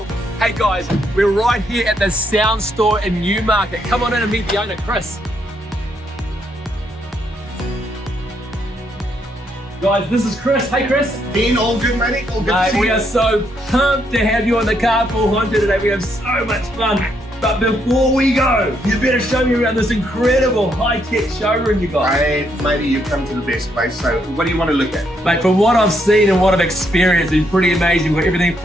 guys, we're right here at the sound store in Newmarket. Come on in and meet the owner, Chris. Guys, this is Chris. Hey Chris. Dean, all good, matey? All good to see you. We are so pumped to have you on the Carpool Honcho today. We have so much fun. But before we go, you better show me around this incredible high-tech showroom you got. Hey, matey, you've come to the best place. So what do you want to look at? Mate, from what I've seen and what I've experienced, it's pretty amazing. We've got everything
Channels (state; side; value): normal; both; correlation 0.75